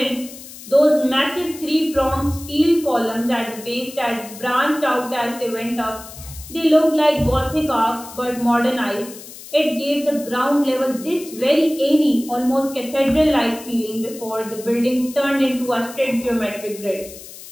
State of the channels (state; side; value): noise; left; hiss, 16 dB below the sound